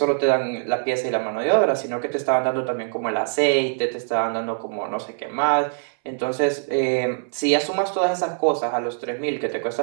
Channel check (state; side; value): silent; left; 63 dB below the other